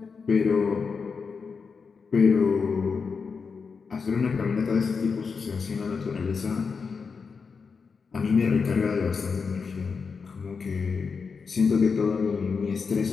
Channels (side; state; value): right; quieter; 5.3 dB